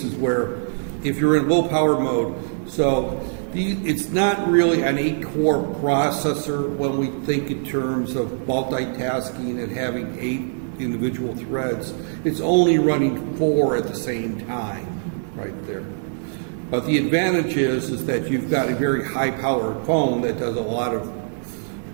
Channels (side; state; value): left; silent; digital silence